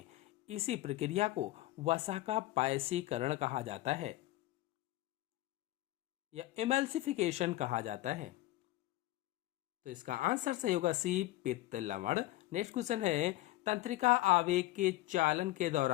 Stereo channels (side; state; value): right; quieter; 17.2 dB